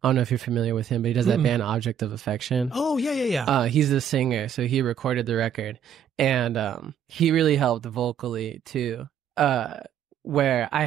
I don't know if you're familiar with him, but he does that band Object of Affection. Oh, yeah. He's the singer, so he recorded the record. And he really helped vocally, too, where I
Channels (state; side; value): quieter; left; 8.6 dB